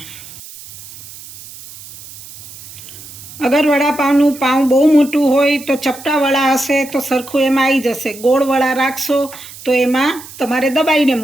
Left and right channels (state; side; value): noise; right; hiss, 17 dB below the sound